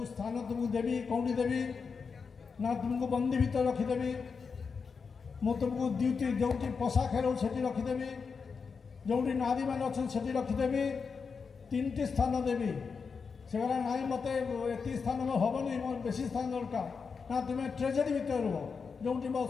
स्थान तुमको देवी कौटी देवी ना तुमको बंदी भीतर रखीदेवी मु तुमको ड्यूटी जो पशा खेल से रखीदेवी जो नारी मैंने अच्छा से रखीदेवी 3टी स्थान देवी से गला ना मत एत स्थान हेनी मोर बेसी स्थान दरकार ना तुम्हें ट्रेजेरी भीतर रुह जो मो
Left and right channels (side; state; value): right; quieter; 5.4 dB